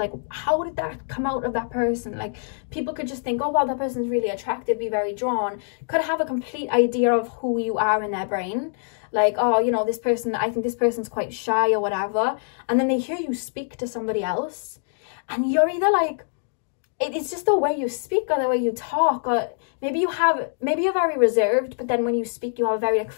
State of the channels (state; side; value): silent; right; digital silence